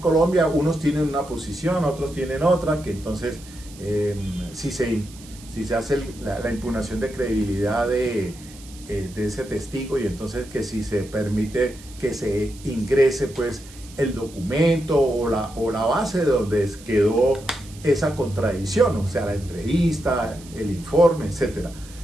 unos tienen una posición, otros tienen otra, que entonces si se hace la impugnación de credibilidad de ese testigo, y entonces que si se permite que se ingrese pues el documento o la base de donde quedó esa contradicción, o sea, la entrevista, el informe, etcétera.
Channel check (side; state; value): right; noise; hiss, 20 dB below the sound